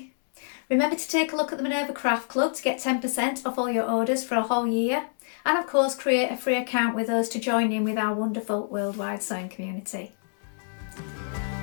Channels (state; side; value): silent; right; 60 dB below the other